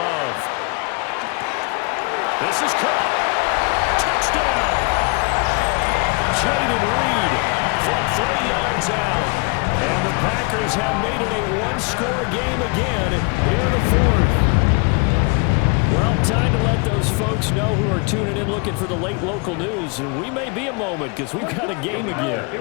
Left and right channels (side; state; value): right; quieter; 32.8 dB